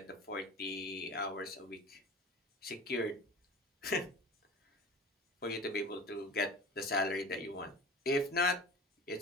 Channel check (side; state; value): both; normal; correlation 0.37